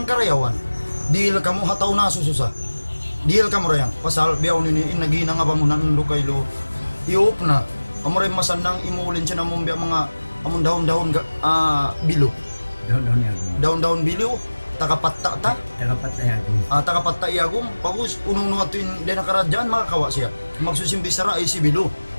karayawan dil kamo hataw na sususa dil kamo rayang pasal biyaw nini in nagina nga bamunan ando kaylo iop na amo ray masanang imulin siya namong biya mga amon daon-daon bilo daon-daon bilo tagapatta ta tagapatta iagum pagus unong nuatuin din nakaradyan makakawa siya magsusimbi sara ay si bilo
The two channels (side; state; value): both; inverted; correlation -1.00